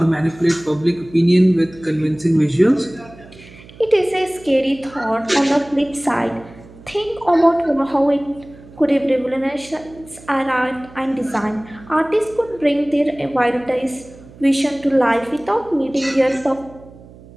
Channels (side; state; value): right; noise; hum, 21 dB below the sound